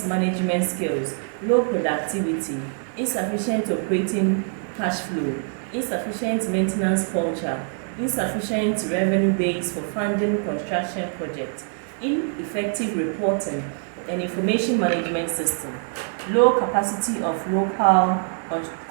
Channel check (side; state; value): left; silent; 63 dB below the other